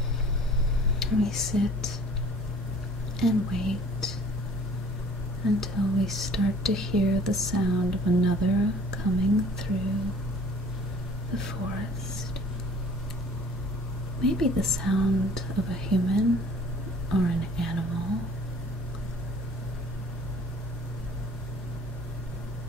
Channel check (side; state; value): both; normal; correlation 0.51